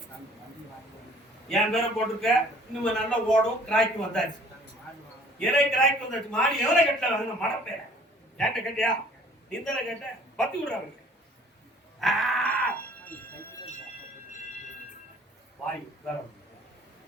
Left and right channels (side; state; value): both; normal; correlation 0.54